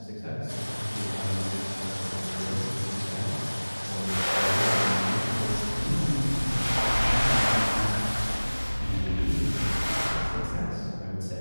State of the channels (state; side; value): inverted; both; correlation -1.00